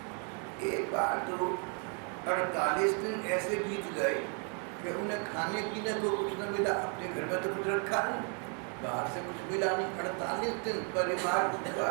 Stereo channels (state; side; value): quieter; left; 39.3 dB